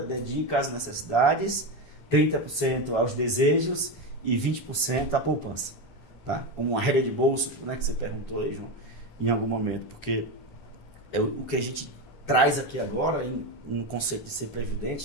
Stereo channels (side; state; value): both; normal; correlation 0.15